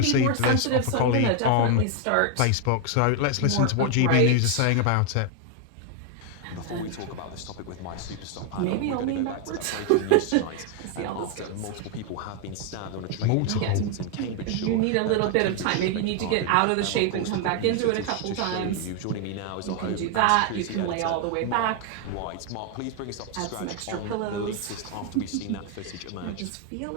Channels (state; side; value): different; both; correlation 0.01